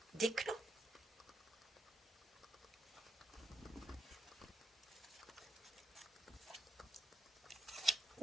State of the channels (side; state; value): both; normal; correlation 0.84